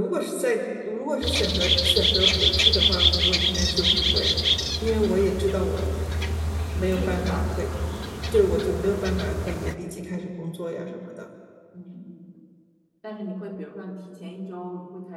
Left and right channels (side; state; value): both; identical; correlation 1.00